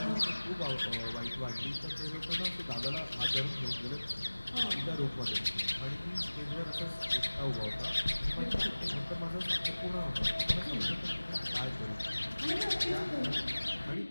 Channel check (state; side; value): inverted; both; correlation -1.00